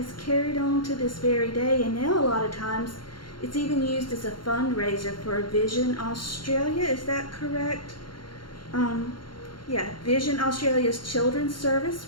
carried on to this very day. And now a lot of times it's even used as a fundraiser for Vision Australia. Is that correct? Vision Australia's children's service,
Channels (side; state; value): right; late; 0.72 ms